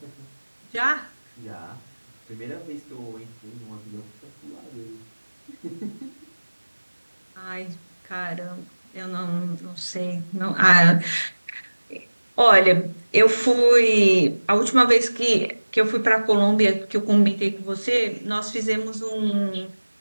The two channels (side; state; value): both; inverted; correlation -1.00